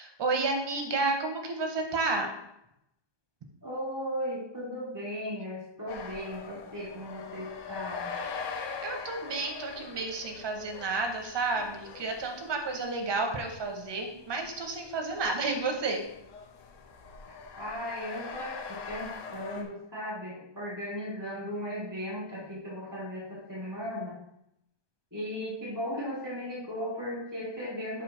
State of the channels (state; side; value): late; left; 1.2 ms